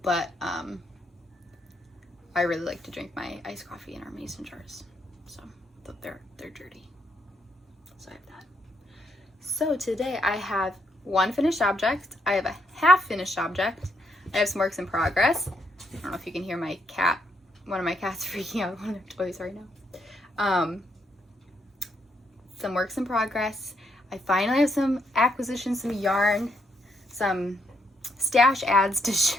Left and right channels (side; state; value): both; normal; correlation 0.75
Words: but I really like to drink my iced coffee in our mason jars, so they're dirty, so I have that. So today I have one finished object, I have a half finished object, I have some works in progress. I don't know if you can hear my cat. One of my cats freaking out with one of their toys right now. Some works in progress. I finally have some acquisitions, some yarn, some stash ads to